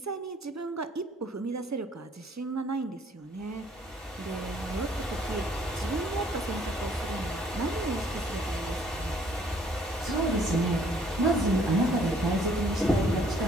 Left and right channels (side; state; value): both; normal; correlation 0.61